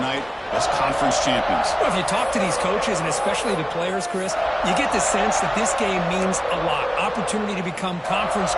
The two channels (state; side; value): identical; both; correlation 1.00